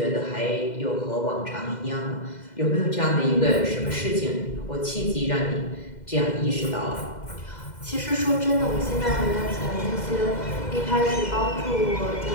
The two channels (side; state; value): right; late; 2.0 ms